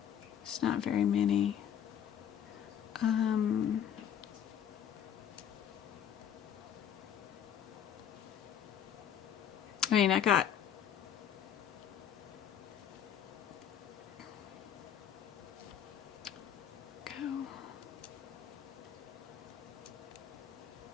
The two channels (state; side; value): quieter; right; 9.2 dB